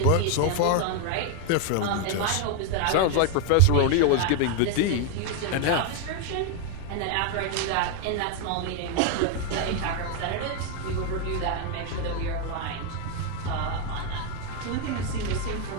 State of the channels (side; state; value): both; different; correlation 0.01